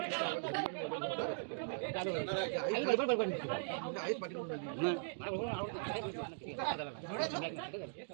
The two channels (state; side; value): silent; left; digital silence